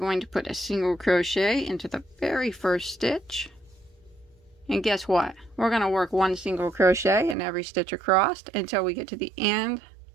to put a single crochet into the very first stitch. And guess what? We're going to work 1 single crochet in every stitch across until we get to the end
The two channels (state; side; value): drops out; left; at 7.4 s